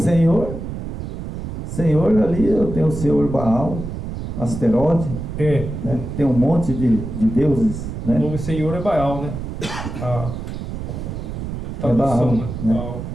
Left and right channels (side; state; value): right; noise; rumble, 6 dB below the sound